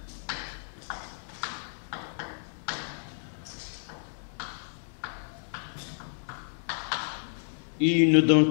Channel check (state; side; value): silent; right; digital silence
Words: Et il nous